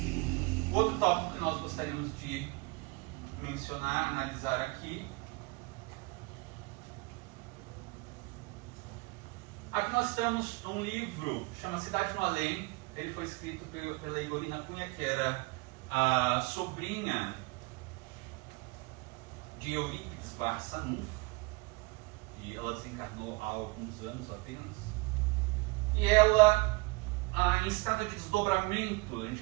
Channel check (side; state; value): left; quieter; 25.7 dB